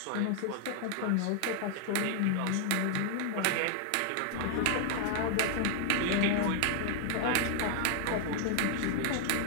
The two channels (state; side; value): different; both; correlation 0.00